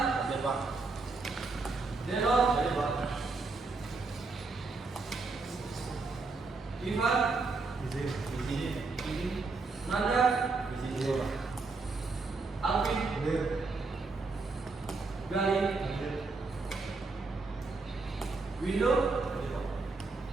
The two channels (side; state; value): left; quieter; 3.9 dB